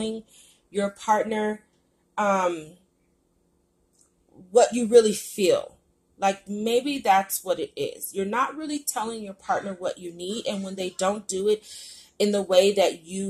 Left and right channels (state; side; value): identical; both; correlation 1.00